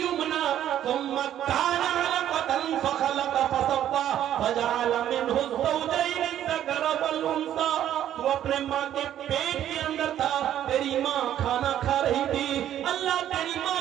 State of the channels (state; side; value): quieter; left; 11.2 dB